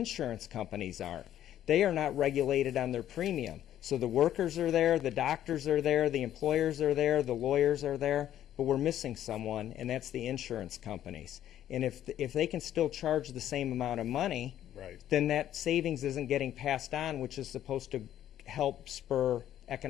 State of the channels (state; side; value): quieter; right; 11.6 dB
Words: companies aren't. They are not regulated on their premium. So the workers are there, the doctors are there, the employers are there, the lawyers are there, but we're missing someone, and that's the insurance companies. And if they can still charge the same amount of money, Right. then that savings isn't getting passed on, which is supposed to help spur